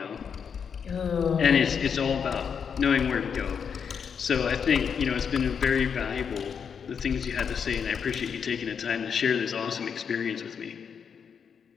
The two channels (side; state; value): right; quieter; 6.9 dB